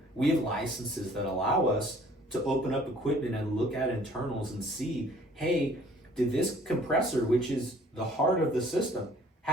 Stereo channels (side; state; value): both; normal; correlation 0.55